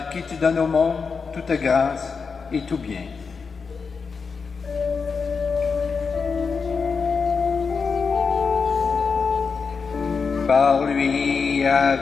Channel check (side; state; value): right; quieter; 5.2 dB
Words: qui tu donnes au monde toute grâce et tout bien. Par lui,